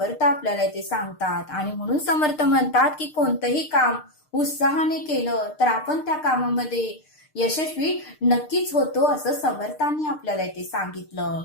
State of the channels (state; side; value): late; right; 6.6 ms